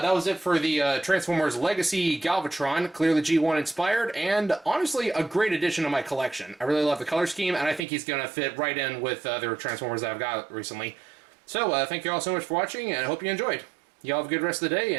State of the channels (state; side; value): drops out; left; at 7.9 s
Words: was it for the Transformers Legacy Galvatron, clearly G1 inspired, and honestly a great addition to my collection. I really love the color scheme, and I think he's going to fit right in with the Transformers that I've got recently. So thank you all so much for watching, and I hope you enjoyed. You all have a good rest of the day,